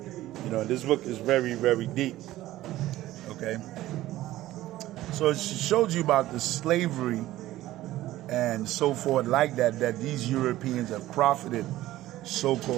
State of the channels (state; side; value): quieter; left; 15.4 dB